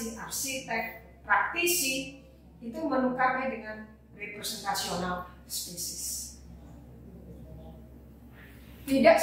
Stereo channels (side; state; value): both; identical; correlation 1.00